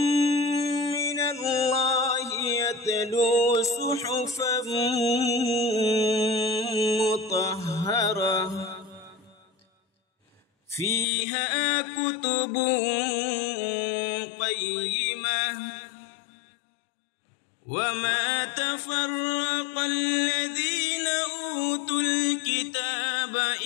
من الله يتلو صحفا مطهرة فيها كتب قيمة. وما تفرق الذين أوتوا الكتاب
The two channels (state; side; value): drops out; right; at 11.1 s